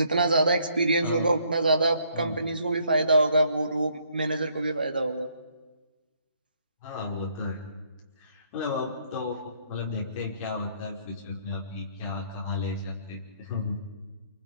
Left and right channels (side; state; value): both; inverted; correlation -0.67